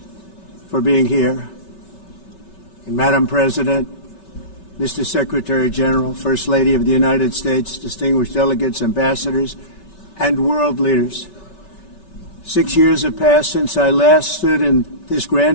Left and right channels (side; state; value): right; late; 5.2 ms